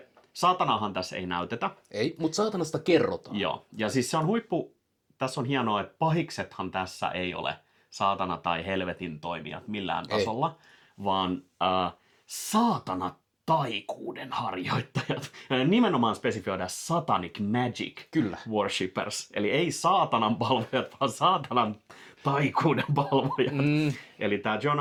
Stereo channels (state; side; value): identical; both; correlation 1.00